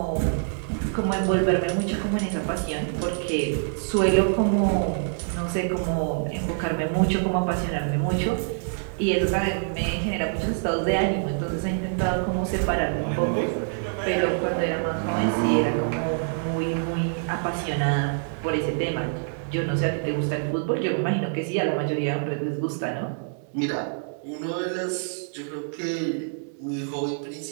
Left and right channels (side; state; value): left; silent; 61 dB below the other